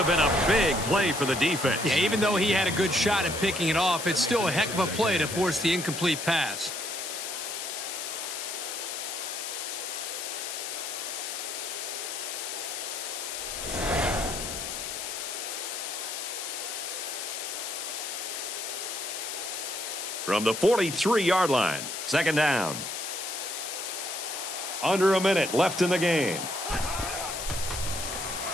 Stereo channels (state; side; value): noise; left; hiss, 5 dB below the sound